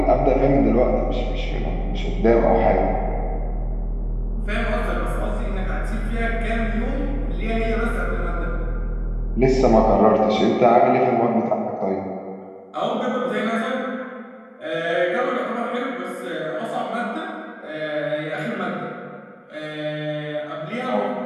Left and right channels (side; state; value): both; identical; correlation 1.00